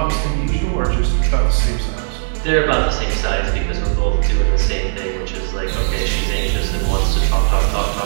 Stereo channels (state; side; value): silent; left; digital silence